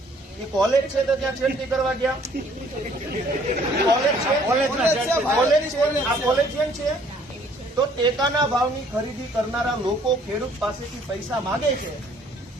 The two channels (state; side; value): normal; both; correlation 0.60